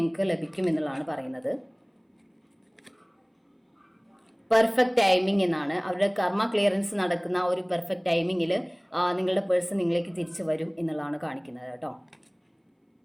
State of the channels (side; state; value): both; identical; correlation 1.00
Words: ലഭിക്കും എന്നുള്ളതാണ് പറയുന്നത്. പെർഫെക്റ്റ് ടൈമിംഗ് എന്നാണ്. അവരുടെ കർമ്മ ക്ലിയറൻസ് നടക്കുന്ന ഒരു പെർഫെക്റ്റ് ടൈമിങ്ങിൽ നിങ്ങളുടെ പേഴ്സൺ നിങ്ങളിലേക്ക് തിരിച്ചു വരും എന്നുള്ളതാണ് കാണിക്കുന്നത് കേട്ടോ.